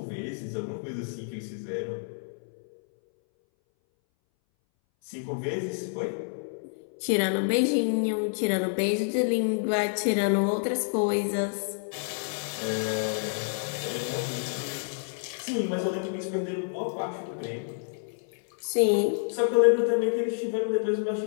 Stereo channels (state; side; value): silent; right; 59 dB below the other